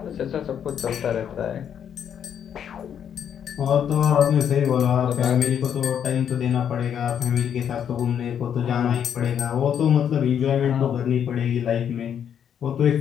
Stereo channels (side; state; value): right; quieter; 8.7 dB